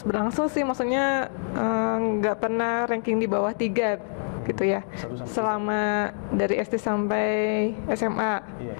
berlangsung sih, maksudnya nggak pernah ranking di bawah 3 gitu ya. Selama dari SD sampai SMA. Iya,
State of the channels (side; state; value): right; silent; digital silence